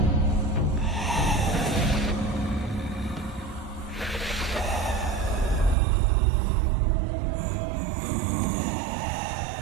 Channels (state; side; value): drops out; left; at 5.8 s